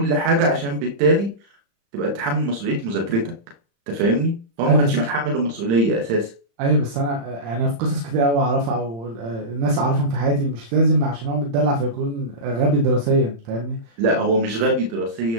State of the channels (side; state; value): left; late; 35 ms